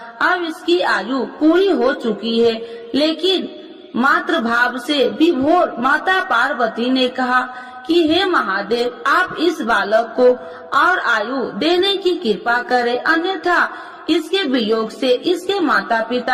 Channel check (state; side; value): identical; both; correlation 1.00